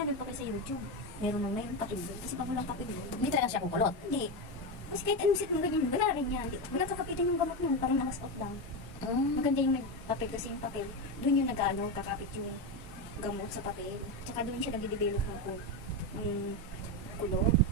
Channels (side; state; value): both; normal; correlation 0.13